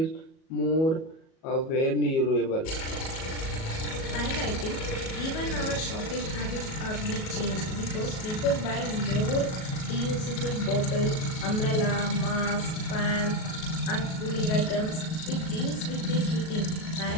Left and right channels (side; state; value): right; late; 37 ms